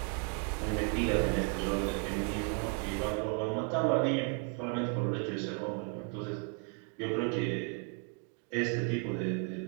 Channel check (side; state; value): left; quieter; 35.9 dB